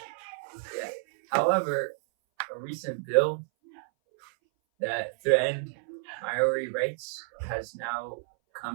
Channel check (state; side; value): silent; left; 58 dB below the other